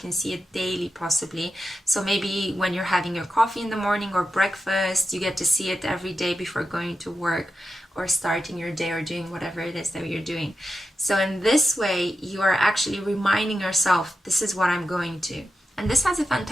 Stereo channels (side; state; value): both; normal; correlation 0.90